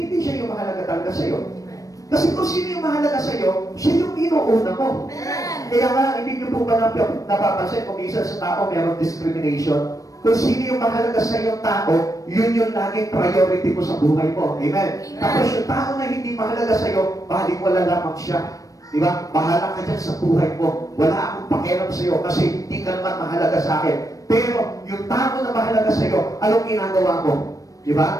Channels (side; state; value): right; late; 0.16 ms